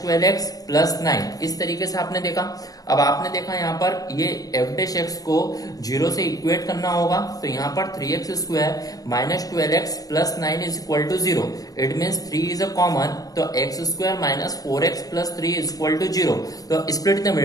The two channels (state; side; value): late; right; 0.18 ms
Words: 12x plus 9, इस तरीके से आपने देखा। अब आपने देखा यहाँ पर ये एफ डैश एक्स को 0 से इक्वेट करना होगा, तो यहाँ पर 3x square minus 12x plus 9 is equal to 0, it means 3 is a common, तो x square minus 4x plus 3 is equal to 0। तो स्प्लिट द